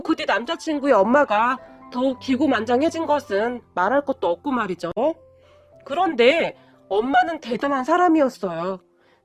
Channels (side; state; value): both; identical; correlation 1.00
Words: 뒤 남자친구의 엄마가 더욱 기고만장해진 것은 말할 것도 없고 말이죠. 그런데 엄마는 대단한 사람이었어요.